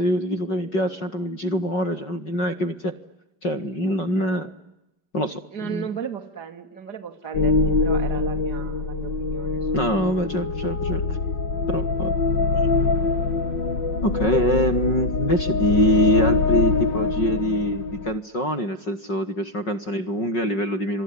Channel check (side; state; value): right; late; 5.4 ms